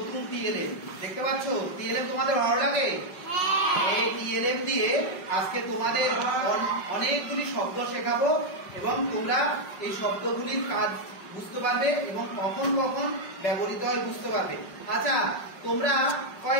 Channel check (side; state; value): right; late; 5.3 ms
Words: টিএলএম দেখতে পাচ্ছ। টিএলএম তোমাদের ভালো লাগে? এই টিএলএম দিয়ে আজকে তোমাদের অনেকগুলি শব্দ শেখাবো এবং তোমরা এই শব্দগুলির কাজ বুঝতে পারবে এবং কখন কখন ব্যবহৃত হয় বুঝতে পারবে। আচ্ছা, তোমরা